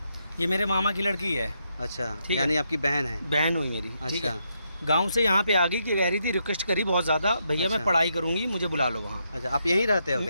ये मेरे मामा की लड़की है। अच्छा ठीक है। यानी आपकी बहन है? बहन हुई मेरी। ठीक अच्छा है। गांव से यहाँ पे आ गई कि कह रही थी, रिक्वेस्ट करी बहुत ज़्यादा, भैया अच्छा। मैं पढ़ाई करूँगी, मुझे बुला लो वहाँ। अच्छा आप यहीं रहते हो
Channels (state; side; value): inverted; both; correlation -0.80